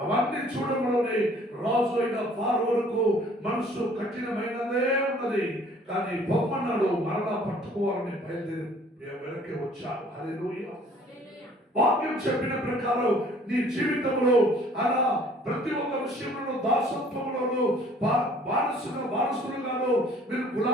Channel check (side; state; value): both; normal; correlation 0.55